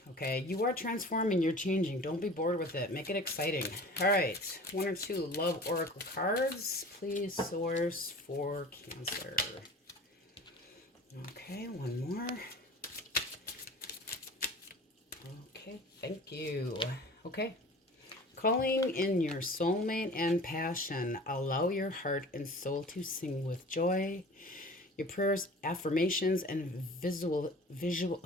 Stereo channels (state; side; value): normal; both; correlation 0.42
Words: Okay, you are transforming, you're changing. Don't be bored with it. Make it exciting. All right, 1 or 2 love oracle cards, please, source for Cancer. Okay, 1 more. Okay, thank you. Okay, calling in your soulmate and passion. Allow your heart and soul to sing with joy. Your prayers, affirmations, and visual.